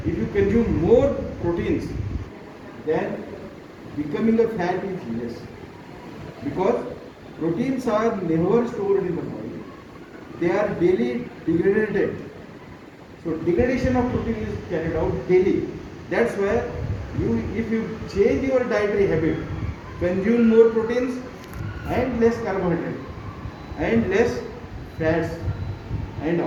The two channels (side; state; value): both; identical; correlation 1.00